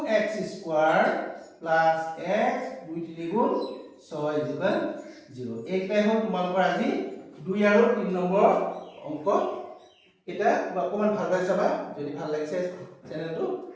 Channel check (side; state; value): both; identical; correlation 1.00